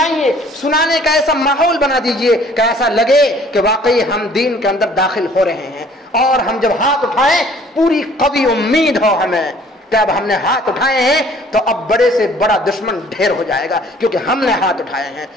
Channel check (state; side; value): normal; both; correlation 0.55